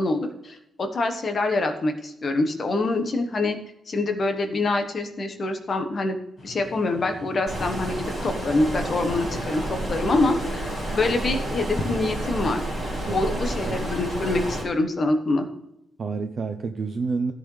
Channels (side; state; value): both; normal; correlation 0.82